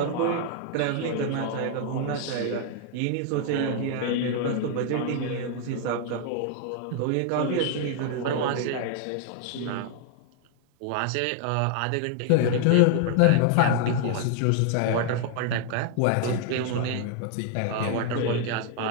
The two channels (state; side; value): different; both; correlation 0.00